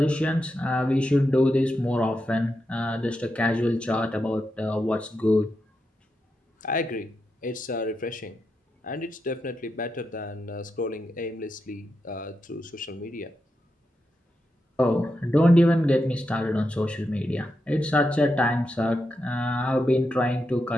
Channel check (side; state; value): both; normal; correlation 0.86